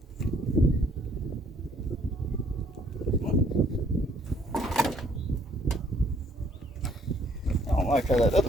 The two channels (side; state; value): both; normal; correlation 0.63